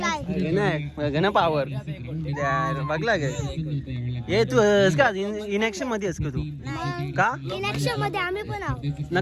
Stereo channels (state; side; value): identical; both; correlation 1.00